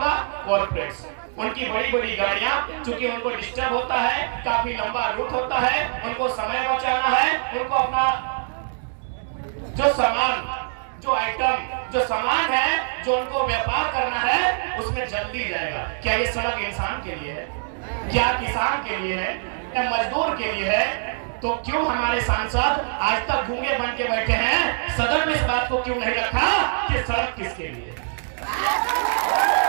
कॉर्पोरेट्स, उनकी बड़ी बड़ी गाड़ियां, क्योंकि उनको डिस्टर्ब होता है, काफी लंबा रूट होता है, उनको समय बचाना है, उनको अपना जो सामान है, जो उनको व्यापार करना है, उसमें जल्दी जाएगा। क्या ये सड़क इंसान के लिए है? क्या किसान के लिए है? क्या मजदूर के लिए है? तो क्यों हमारे सांसद आज तक गूंगे बन के बैठे हैं? सदन में इस बात को क्यों नहीं रखा कि सड़क किसके लिए?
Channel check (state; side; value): silent; left; digital silence